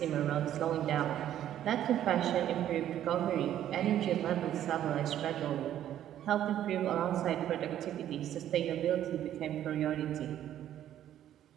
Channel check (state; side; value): quieter; left; 11.4 dB